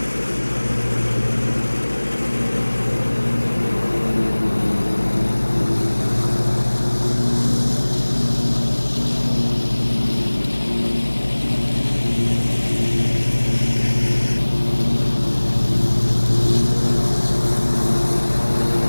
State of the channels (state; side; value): inverted; both; correlation -1.00